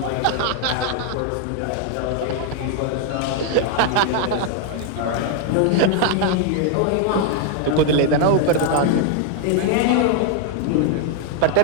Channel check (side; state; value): both; different; correlation 0.00